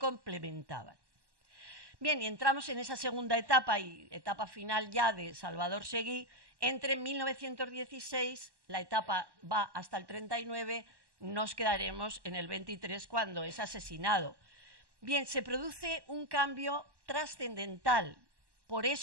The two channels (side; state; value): left; late; 1.1 ms